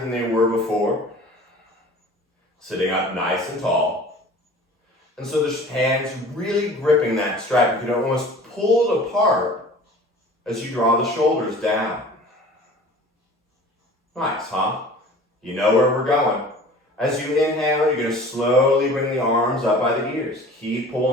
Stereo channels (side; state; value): both; normal; correlation 0.44